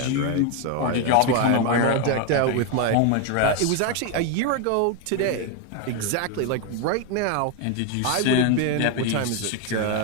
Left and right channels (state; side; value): different; both; correlation 0.01